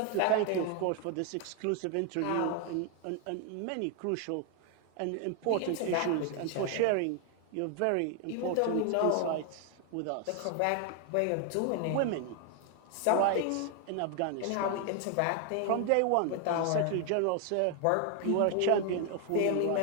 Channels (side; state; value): both; different; correlation 0.00